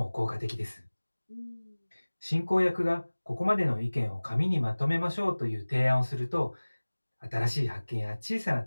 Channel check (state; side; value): inverted; both; correlation -1.00